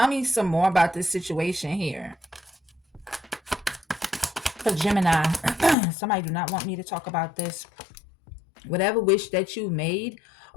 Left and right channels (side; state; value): right; drops out; at 5.8 s